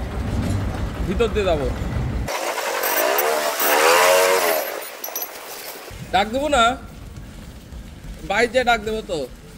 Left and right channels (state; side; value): identical; both; correlation 1.00